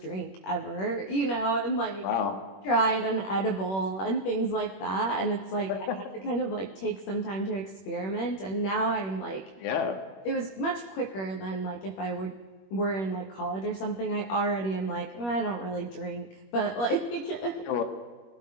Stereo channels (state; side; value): late; right; 21 ms